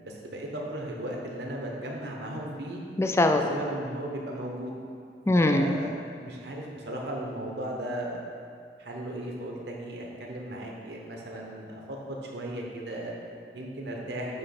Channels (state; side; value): normal; both; correlation 0.63